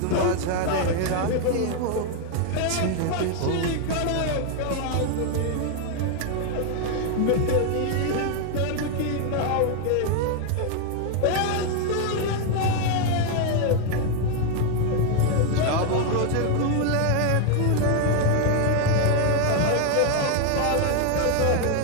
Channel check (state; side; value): different; both; correlation 0.01